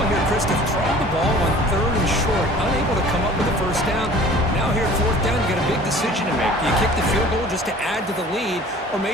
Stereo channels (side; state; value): both; normal; correlation 0.47